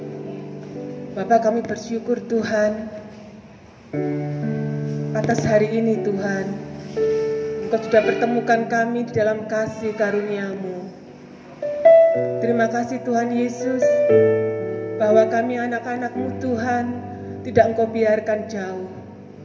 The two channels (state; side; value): identical; both; correlation 1.00